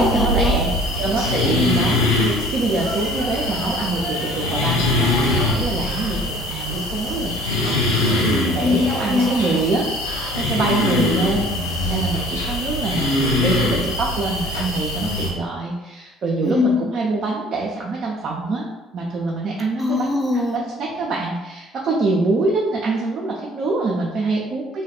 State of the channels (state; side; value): normal; both; correlation 0.52